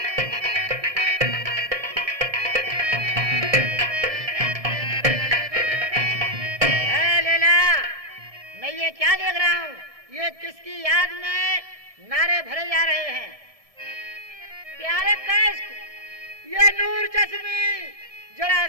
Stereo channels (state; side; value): late; left; 1.6 ms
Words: मैं ये क्या देख रहा हूँ? ये किसकी याद में नारे भरे जा रहे हैं? प्यारे कैस, ये नूर चश्मी जरा